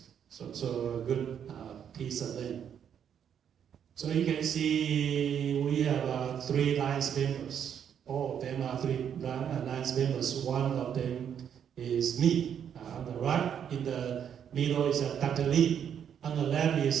So a good piece of land. So you can see we have 3 Alliance members. All of them are 3 Alliance members. One of them is me. On the right, in the middle is Dr. Li. On the left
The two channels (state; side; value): quieter; left; 8.5 dB